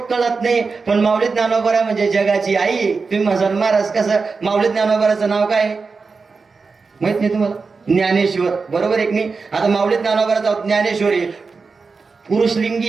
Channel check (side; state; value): left; quieter; 4.6 dB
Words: कळत नाही. पण माऊली ज्ञानोबा म्हणजे जगाची आई. तुम्ही म्हणाल महाराज कसं, माऊली ज्ञानोबाचं नाव काय माहित नाही तुम्हाला? ज्ञानेश्वर, बरोबर एक नाही. आता माऊली ज्ञानोबाचं ज्ञानेश्वरी पुरुषलिंगी